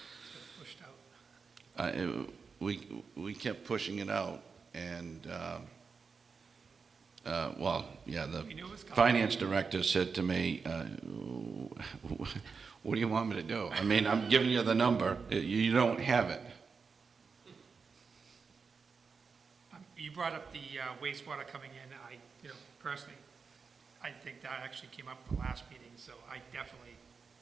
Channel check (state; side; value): quieter; left; 5.2 dB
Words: Pushed out. we kept pushing it out, and well, yeah, the We knew it was coming. finance director said to me, what do you want me to do? I mean, I'm giving you the number, you don't have it. You brought up the wastewater coming in. Personally, I think that actually came up at the last meeting, so